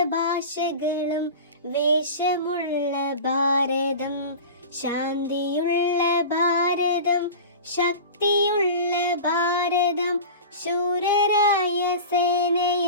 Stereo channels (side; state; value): both; inverted; correlation -0.32